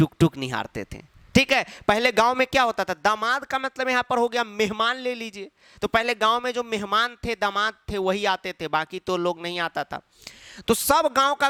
टुक निहारते थे। ठीक है, पहले गांव में क्या होता था, दामाद का मतलब यहां पर हो गया मेहमान ले लीजिए। तो पहले गांव में जो मेहमान थे, दामाद थे, वही आते थे, बाकी तो लोग नहीं आता था। तो सब गांव का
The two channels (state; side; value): identical; both; correlation 1.00